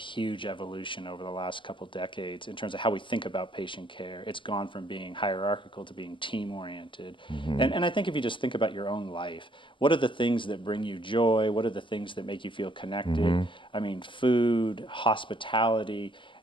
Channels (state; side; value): late; right; 0.24 ms